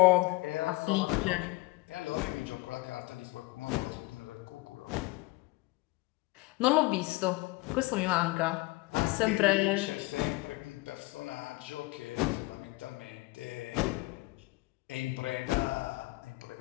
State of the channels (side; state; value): right; quieter; 22.5 dB